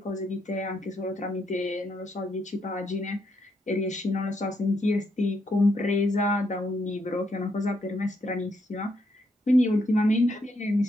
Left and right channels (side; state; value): both; normal; correlation 0.77